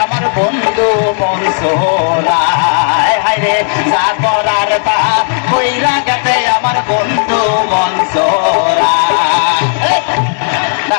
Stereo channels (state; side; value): silent; right; 73 dB below the other